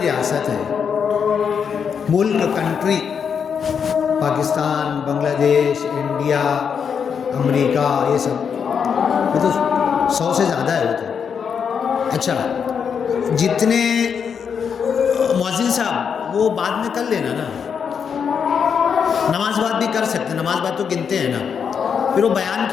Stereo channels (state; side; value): quieter; right; 6.9 dB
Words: ریاست ہے، ملک، کنٹری، پاکستان، بنگلہ دیش، انڈیا، امریکہ، یہ سب، یہ تو 100 سے زیادہ ہے وہ تو۔ اچھا، جتنے مؤذن صاحب وہ بعد میں کر لینا نا، نماز بعد بھی کر سکتے ہیں، نماز بعد تو گنتے ہیں نا، پھر وہ بیان